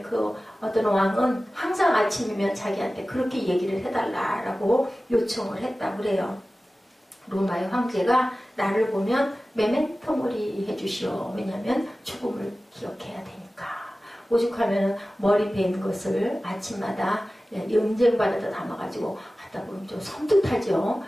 어떤 왕은 항상 아침이면 자기한테 그렇게 얘기를 해달라라고 요청을 했다고 그래요. 로마의 황제가 나를 보면 메멘토몰이 해주시오. 왜냐하면 죽음을 기억해야 되니까. 오죽하면 머리 벤 것을 아침마다 은쟁반에다 담아가지고 하다 보면 좀 섬뜩하죠.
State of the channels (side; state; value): both; normal; correlation 0.96